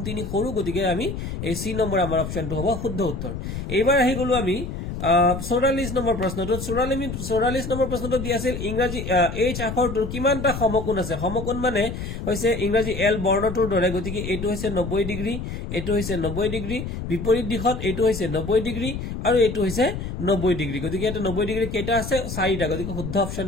3 সৰু গতিকে আমি এই সি নম্বৰ আমাৰ অপচনটো হ'ব শুদ্ধ উত্তৰ এইবাৰ আহি গলো আমি 44 নম্বৰ প্ৰশ্নটো 44 নম্বৰ প্ৰশ্নটো দি আছিল ইংৰাজী এইচ আখৰটোৰ কিমানটা সমকোণ আছে সমকোণ মানে হৈছে ইংৰাজী এল বৰ্ণটোৰ দৰে গতিকে এইটো হৈছে 90 ডিগ্ৰী এইটো হৈছে 90 ডিগ্ৰী বিপৰীত দিশত এইটো হৈছে 90 ডিগ্ৰী আৰু এইটো হৈছে 90 ডিগ্ৰী গতিকে এটা 90 ডিগ্ৰী কেইটা আছে 4টা গতিকে শুদ্ধ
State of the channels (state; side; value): noise; left; rumble, 6 dB below the sound